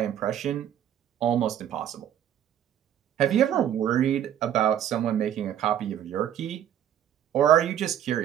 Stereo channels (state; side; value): quieter; left; 10.3 dB